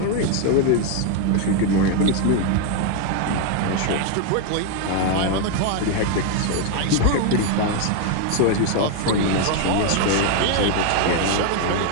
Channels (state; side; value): different; both; correlation 0.01